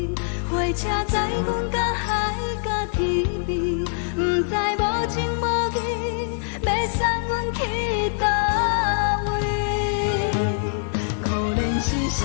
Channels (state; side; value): silent; right; 63 dB below the other